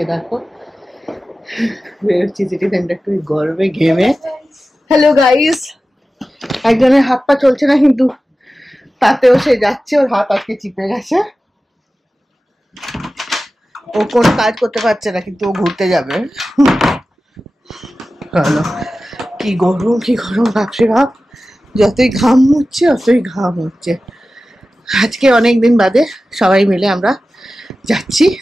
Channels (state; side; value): normal; both; correlation 0.95